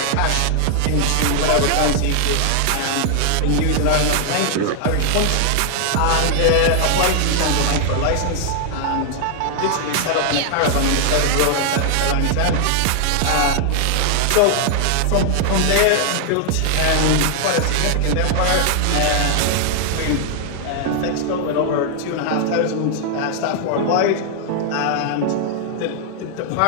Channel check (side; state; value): both; different; correlation 0.00